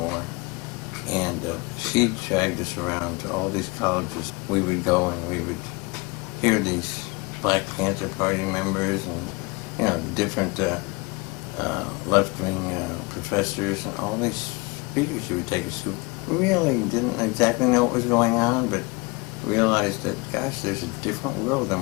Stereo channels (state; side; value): quieter; right; 26.6 dB